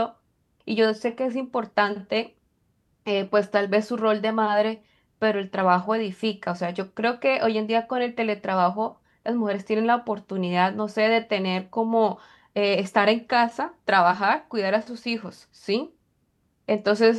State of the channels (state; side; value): identical; both; correlation 1.00